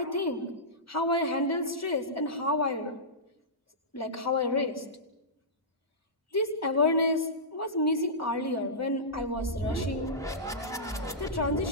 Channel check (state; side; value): normal; both; correlation -0.16